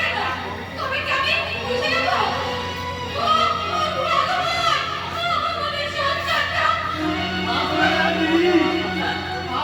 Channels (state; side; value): identical; both; correlation 1.00